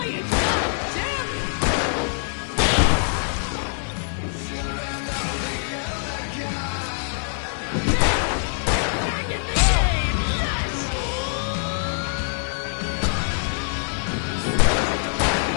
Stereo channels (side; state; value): right; silent; 63 dB below the other